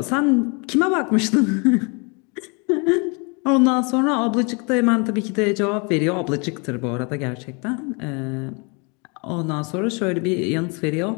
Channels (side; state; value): right; quieter; 32.5 dB